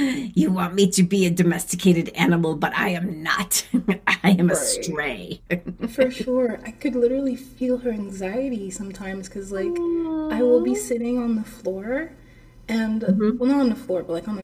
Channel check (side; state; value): both; identical; correlation 1.00